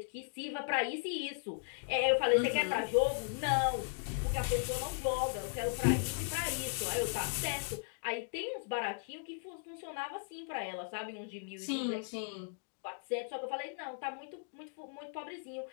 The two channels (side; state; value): right; silent; digital silence